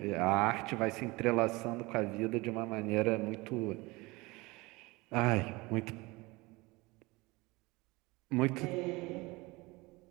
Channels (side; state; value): left; quieter; 23.4 dB